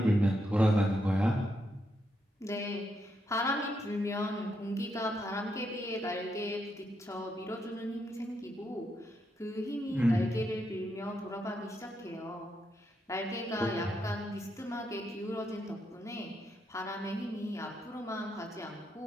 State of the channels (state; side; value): normal; both; correlation 0.81